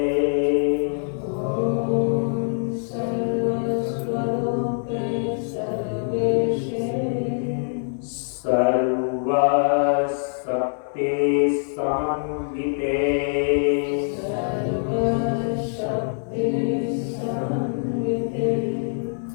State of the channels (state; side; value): silent; right; digital silence